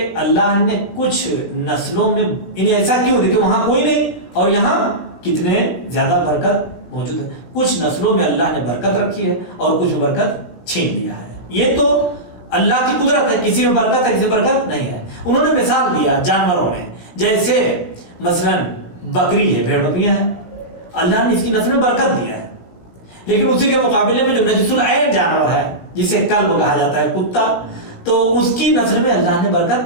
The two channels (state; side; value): late; right; 17 ms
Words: اللہ نے کچھ نسلوں میں انہیں ایسا کیوں دیکھے وہاں کوئی نہیں اور یہاں کتنے زیادہ برکت موجود ہے. کچھ نسلوں میں اللہ نے برکت رکھی ہے اور کچھ میں برکت چھین لیا ہے. یہ تو اللہ کی قدرت ہے، کسی میں برکت ہے کسی میں برکت نہیں ہے. انہوں نے مثال دیا جانوروں میں، جیسے مثلا بکری ہے، بھیڑ بکریاں ہیں، اللہ نے اس کی نسل میں برکت دیا ہے. لیکن اسی کے مقابلے میں جو نجس العین جانور ہے جسے کلب کہا جاتا ہے، کتا، تو اس کی نسل میں اللہ نے